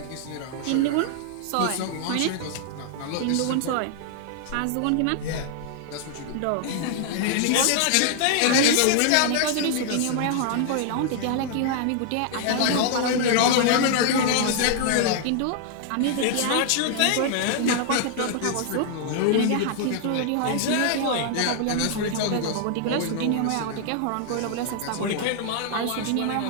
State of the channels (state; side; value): different; both; correlation 0.00